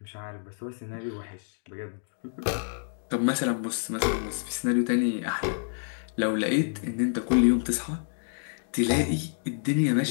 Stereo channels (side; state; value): right; silent; digital silence